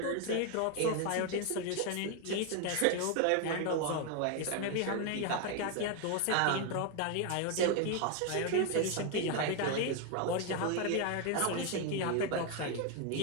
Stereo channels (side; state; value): both; different; correlation 0.01